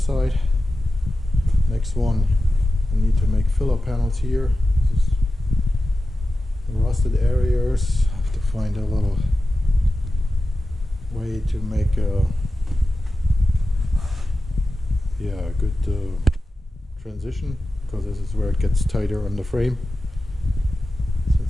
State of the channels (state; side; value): normal; both; correlation 0.93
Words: Next one, I need to make filler panels here. This is the rusted areas. I have to find a little way to make a good transition, because this is where it gets tighter on the frame,